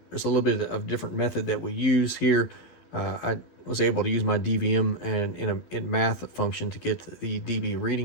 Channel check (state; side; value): late; right; 13 ms